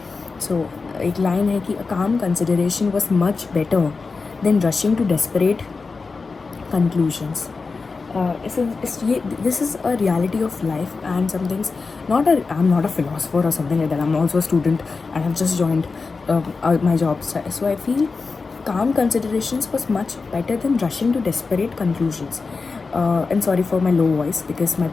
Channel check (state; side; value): quieter; right; 4.3 dB